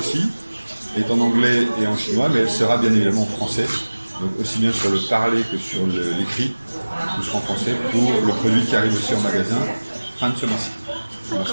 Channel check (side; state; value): both; inverted; correlation -1.00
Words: est en anglais et en chinois, mais elle sera bien évidemment en français, donc aussi bien sur le parler que sur l'écrit, tout sera en français pour le produit qui arrive aussi en magasin fin de ce mois-ci, au